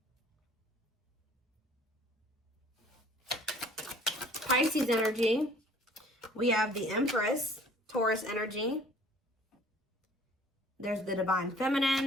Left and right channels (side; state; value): both; normal; correlation 0.54